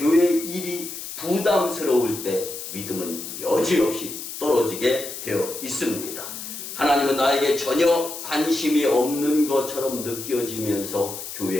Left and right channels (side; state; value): left; noise; hiss, 9 dB below the sound